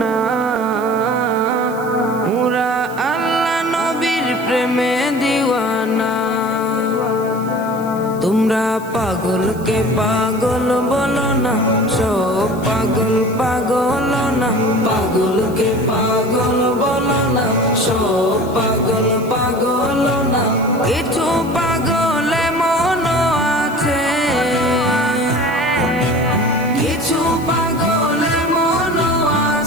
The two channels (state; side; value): noise; right; hiss, 21 dB below the sound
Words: পুরা আল্লাহ নবীর প্রেমে দিওয়ানা। তোমরা পাগলকে পাগল বলো না, সব পাগল পাগল না। পাগলকে পাগল বলো না, সব পাগল পাগল না। কিছু পাগল এমন আছে, কিছু পাগল এমন